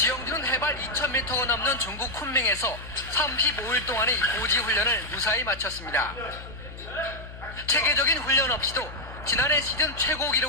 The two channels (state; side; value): noise; left; hum, 14 dB below the sound